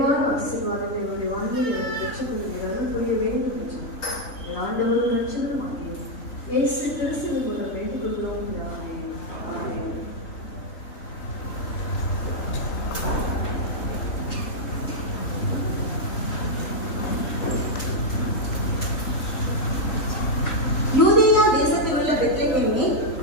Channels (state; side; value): late; right; 3.5 ms